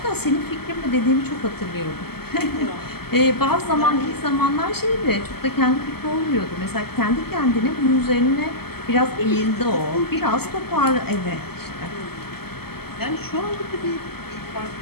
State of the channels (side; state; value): right; late; 0.96 ms